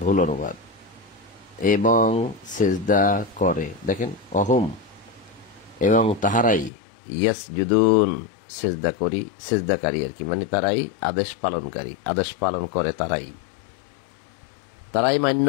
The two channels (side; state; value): right; drops out; at 6.7 s